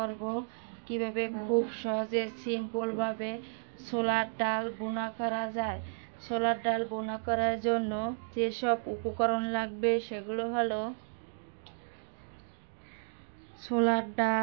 কিভাবে খুব সহজে সিম্পলভাবে ছোলার ডাল ভুনা করা যায়। ছোলার ডাল ভুনা করার জন্য যেসব উপকরণ লাগবে সেগুলো হলো ছোলার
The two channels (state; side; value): silent; left; digital silence